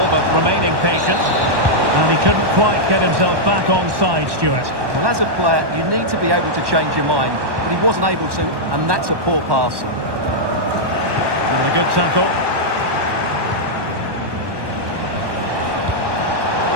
but remaining patient. And he couldn't quite get himself back on side, Stuart. Well, as a player, you need to be able to change your mind, but he wasn't able to, and that's a poor pass. And a good tackle.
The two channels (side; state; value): left; late; 1.1 ms